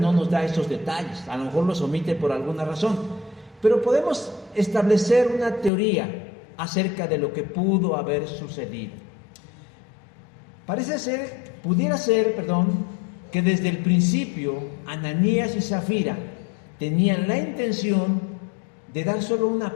nos da esos detalles, a lo mejor los omite por alguna razón, pero podemos establecer una teoría acerca de lo que pudo haber sucedido. Pudiera ser, que desde el principio Ananías y Zafira tenían la intención de dar solo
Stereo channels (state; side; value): drops out; right; at 5.7 s